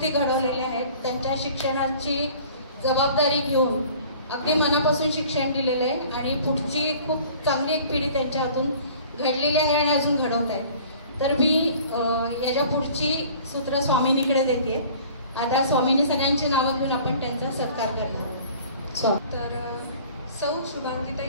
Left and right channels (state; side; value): inverted; both; correlation -0.48